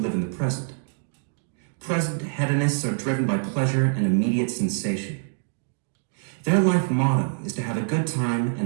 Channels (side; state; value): left; silent; digital silence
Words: in the present. Present hedonists are driven by pleasure and immediate sensation. Their life motto is to have a good time